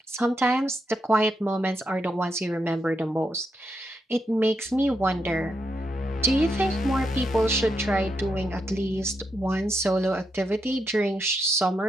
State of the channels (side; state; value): both; normal; correlation 0.82